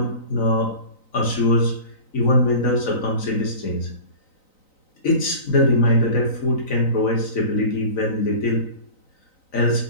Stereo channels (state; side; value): late; right; 3.9 ms